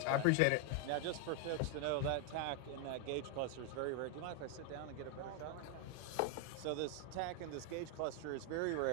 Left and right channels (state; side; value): different; both; correlation 0.00